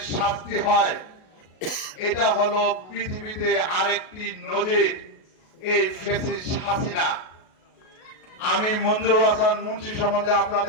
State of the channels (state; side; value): late; right; 37 ms